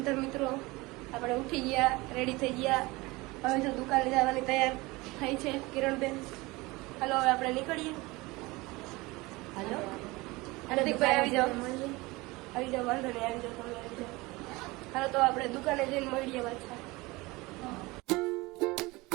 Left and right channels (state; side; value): quieter; left; 22.5 dB